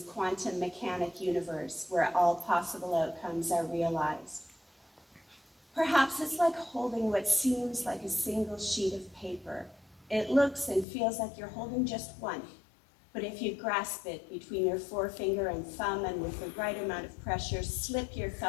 quantum mechanic universe where all possible outcomes are realized. Perhaps it's like holding what seems like a single sheet of paper. It looks and feels like you're holding just one, but if you grasp it between your forefinger and thumb and with the right amount of pressure, slip your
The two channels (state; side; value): drops out; right; at 10.9 s